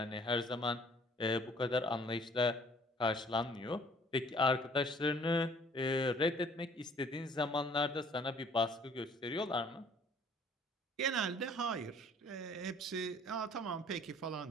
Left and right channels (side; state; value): both; normal; correlation 0.56